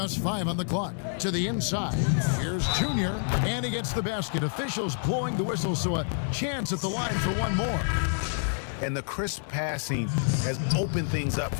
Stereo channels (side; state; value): right; silent; digital silence